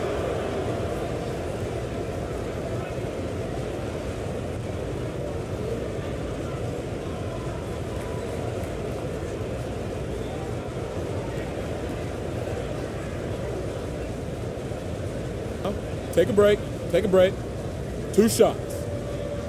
Take a break. Take a break. Two shots.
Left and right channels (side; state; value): both; identical; correlation 1.00